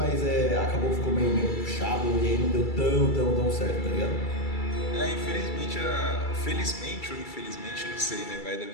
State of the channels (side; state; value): right; late; 2.3 ms